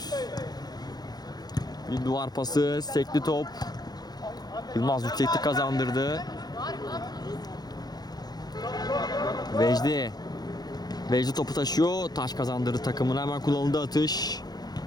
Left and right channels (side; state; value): right; late; 0.19 ms